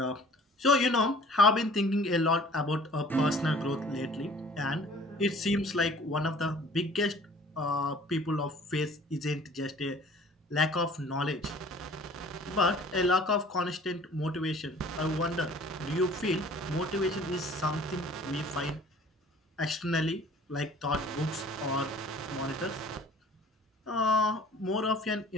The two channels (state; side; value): normal; both; correlation 0.50